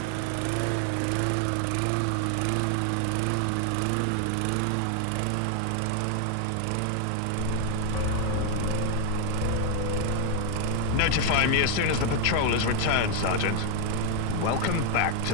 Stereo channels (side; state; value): both; different; correlation 0.00